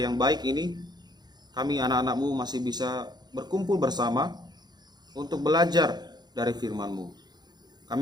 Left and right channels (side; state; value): left; late; 0.20 ms